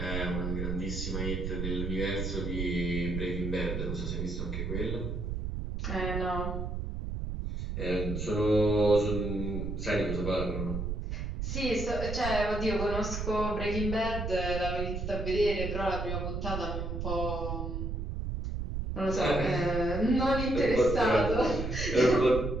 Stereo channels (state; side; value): noise; right; rumble, 3 dB below the sound